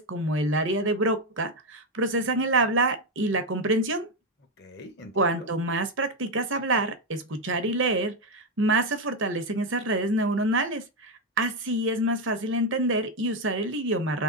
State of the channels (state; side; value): normal; both; correlation 0.07